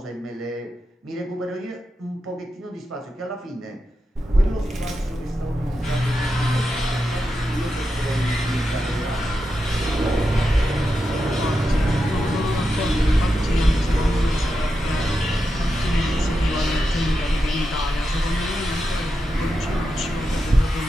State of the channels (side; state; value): both; normal; correlation 0.88